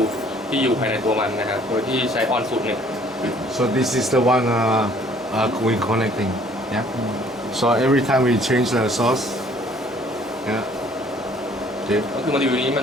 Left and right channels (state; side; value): normal; both; correlation 0.58